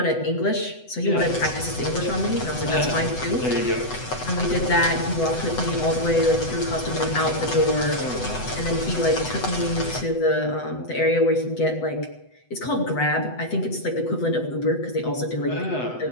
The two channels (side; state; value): right; late; 8.0 ms